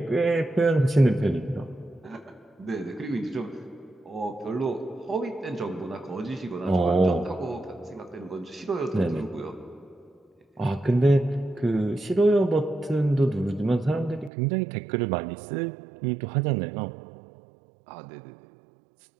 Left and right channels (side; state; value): left; drops out; at 14.3 s